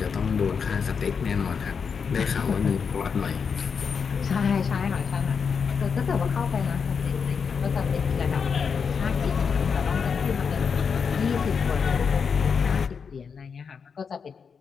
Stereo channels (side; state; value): right; quieter; 6.1 dB